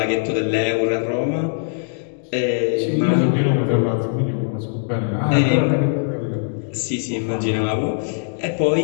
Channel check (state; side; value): silent; right; digital silence